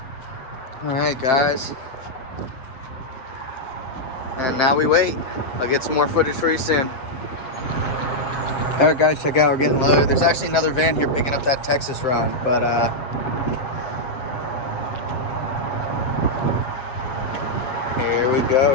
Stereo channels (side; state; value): right; late; 7.6 ms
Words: All right, guys. And now we wait. I'll get some more footage for you soon. All right, guys, check out. We're getting loaded. There's actually another van here picking up that Texas run, but here we